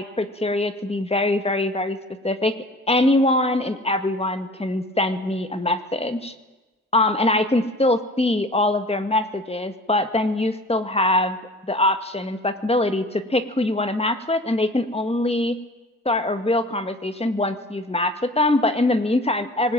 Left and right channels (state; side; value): normal; both; correlation 0.43